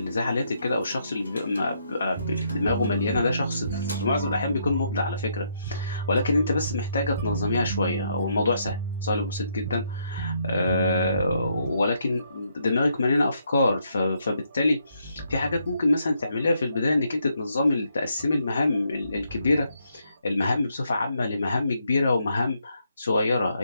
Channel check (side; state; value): both; inverted; correlation -0.75